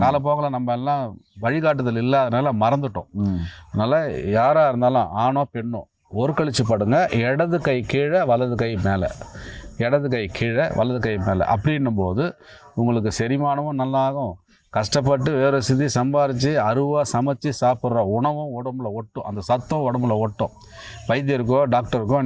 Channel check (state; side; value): identical; both; correlation 1.00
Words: காலப்போக்கில் நம்ம எல்லாம் வழிகாட்டுதல் இல்லாதனால மறந்துட்டோம். அதனால் யாராக இருந்தாலும் ஆணோ பெண்ணோ ஒரு கழிச்சு படுங்க. இடது கை கீழே, வலது கை மேலே, இடது கை கீழே, வலது கை மேலே. அப்படின்னும் போது உங்களுக்கு செரிமானமும் நல்லாகும். கஷ்டப்பட்டு வேறு சிதி சம்பாரித்து அருவாக சமைச்சு சாப்பிட்ற உணவும் உடம்புல ஒட்டும். அந்த சத்தம் உடம்புல ஒட்டும். வைத்தியருக்கோ டாக்டருக்கோ